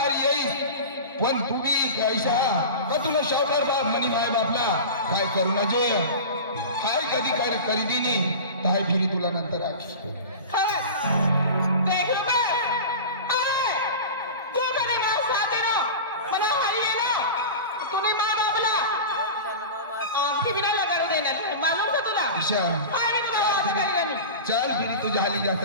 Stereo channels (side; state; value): both; inverted; correlation -0.31